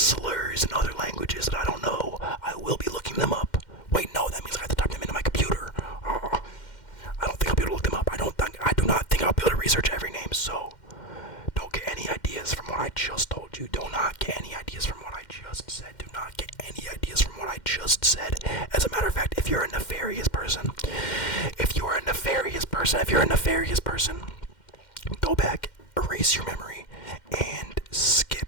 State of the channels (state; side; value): late; right; 2.1 ms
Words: in other languages that I don't know. I will be looking them up. Wait, no, that means I have to type them into my computer. I don't think I'll be able to look them up. I do not think I'll be able to research every name, so don't get any ideas from what I just told you. Do not you're a nefarious person, go back, erase your memory, and